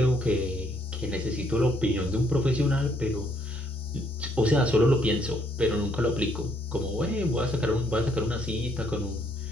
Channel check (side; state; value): both; normal; correlation 0.69